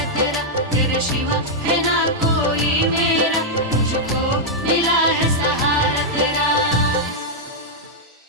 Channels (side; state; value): both; normal; correlation -0.05